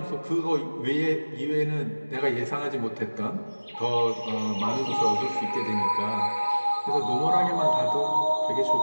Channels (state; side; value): inverted; both; correlation -1.00